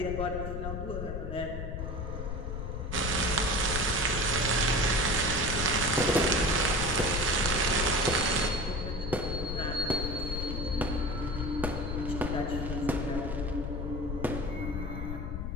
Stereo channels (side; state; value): left; noise; rumble, 4 dB below the sound